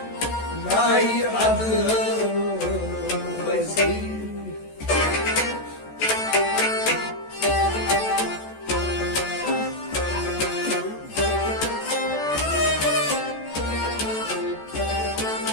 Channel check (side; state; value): right; late; 14 ms